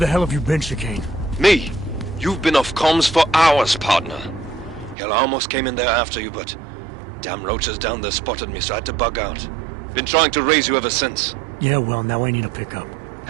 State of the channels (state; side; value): drops out; left; at 5.0 s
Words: hell have you been, Chicane? Me? You've been off comms for hours, partner. Hell, I almost came in there after you, but... damn roaches down there spotted me, so I had to bug out. Been trying to raise you ever since. Yeah, well, now I need a pickup.